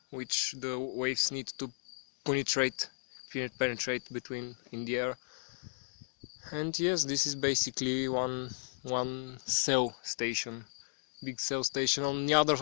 which the waves need to penetrate between in the air. And yes, this is basically one cell station, big cell station. On the other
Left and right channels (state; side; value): silent; right; digital silence